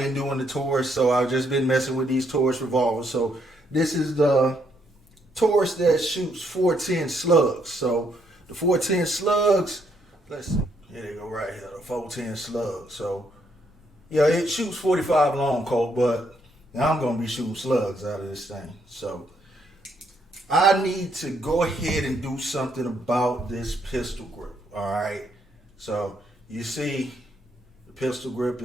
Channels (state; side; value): normal; both; correlation 0.73